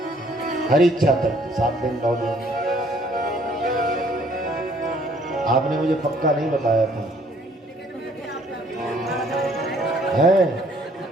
हरी इच्छा तक 7 दिन 9 दिन। आपने मुझे पक्का नहीं बताया था है?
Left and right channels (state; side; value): normal; both; correlation 0.61